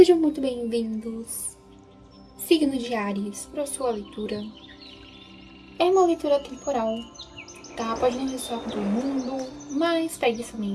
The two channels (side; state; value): both; identical; correlation 1.00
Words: muito bem-vindos, signo de Áries, para a sua leitura. É uma leitura temporal, tá? Pode não ressoar com todo mundo, mas pegue